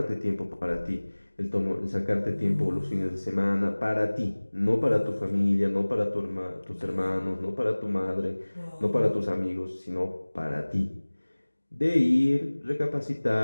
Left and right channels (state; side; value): inverted; both; correlation -1.00